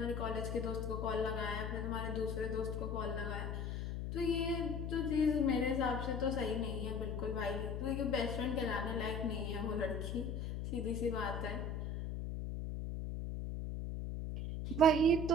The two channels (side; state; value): left; noise; hum, 3 dB below the sound